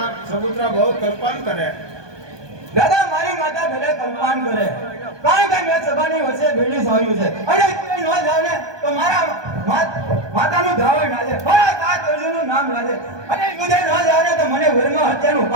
સપુત્રા બહુ કલ્પન કરે. દાદા મારી માતા ભલે કલ્પાન કરે, કારણ કે મેં સભાની વચ્ચે ભેળી સોર્યું છે અને ન જાવ ને તો મારા માતાનું ધાવણ લાજે, મારા તાત અર્જુનનું નામ લાજે અને યુદ્ધે ન જાવ ને તો મને વરમાં હત્યાનું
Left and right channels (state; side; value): late; left; 1.2 ms